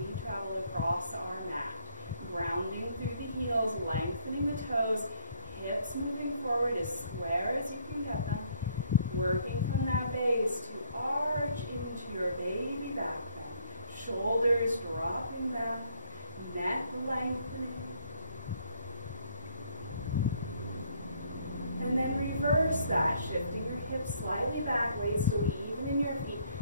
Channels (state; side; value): inverted; both; correlation -0.66